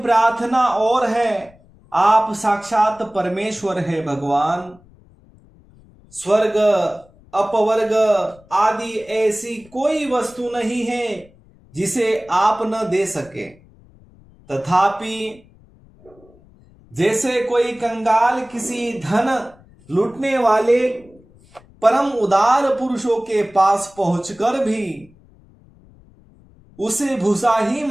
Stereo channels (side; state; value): left; noise; rumble, 27 dB below the sound